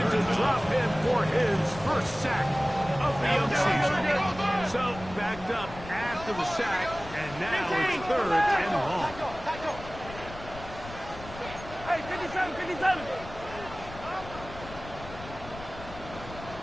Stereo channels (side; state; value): left; noise; rumble, 14 dB below the sound